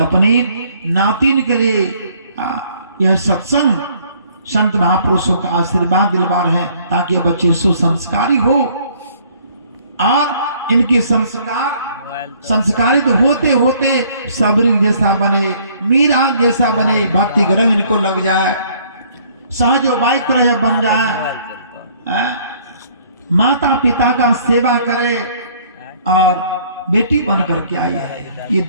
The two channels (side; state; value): both; inverted; correlation -0.60